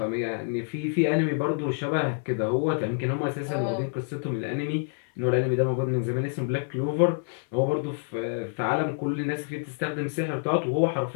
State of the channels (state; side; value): silent; right; 60 dB below the other